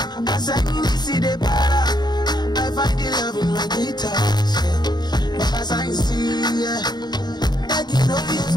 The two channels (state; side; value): late; right; 0.20 ms